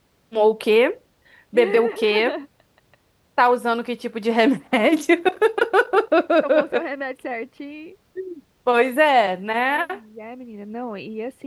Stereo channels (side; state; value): both; identical; correlation 1.00